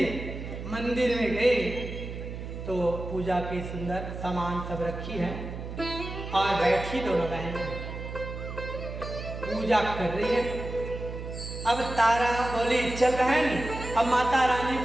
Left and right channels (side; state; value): right; noise; hum, 8 dB below the sound